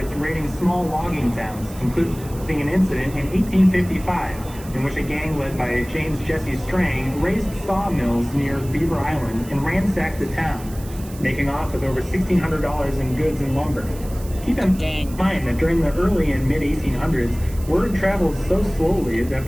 raiding small logging towns, including an incident in 1855 in which a gang led by James Jesse Strang raised sawmills near Beaver Island and ransacked the town, making off with over $1,600 in goods and lumber. Keep in mind that during the early and mid-1800s, word traveled so slowly that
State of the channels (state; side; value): noise; right; hiss, 19 dB below the sound